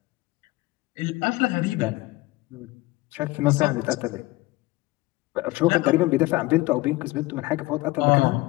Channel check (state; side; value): quieter; right; 20.7 dB